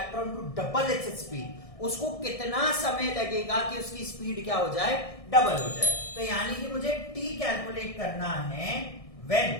to double its speed, उसको कितना समय लगेगा कि उसकी स्पीड क्या हो जाए, डबल हो जाए। तो यानी कि मुझे t कैलकुलेट करना है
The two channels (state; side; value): late; right; 1.6 ms